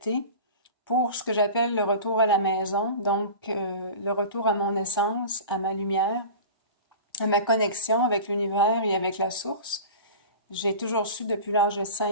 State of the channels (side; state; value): both; inverted; correlation -0.35